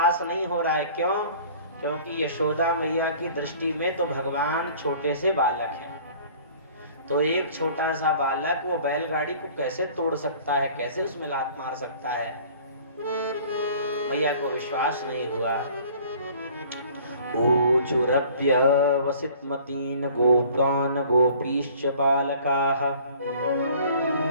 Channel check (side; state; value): both; inverted; correlation -0.51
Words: नहीं हो रहा है। क्यों? क्योंकि यशोदा मैया की दृष्टि में तो भगवान छोटे से बालक हैं। तो एक छोटा सा बालक वो बैलगाड़ी को कैसे तोड़ सकता है, कैसे उसमें लात मार सकता है? मैया को विश्वास नहीं हुआ। ऊचुरप्य वसितमतीन गोपान गोपीश्च बालकाः